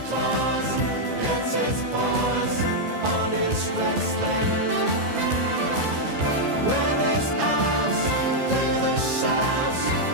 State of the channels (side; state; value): left; late; 14 ms